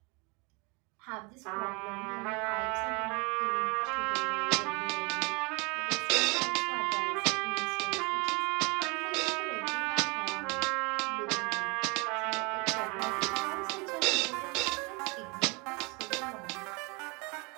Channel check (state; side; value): quieter; left; 29.0 dB